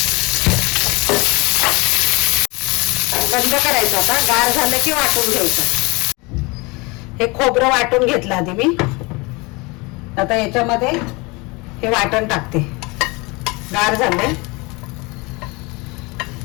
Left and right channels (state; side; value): quieter; right; 26.3 dB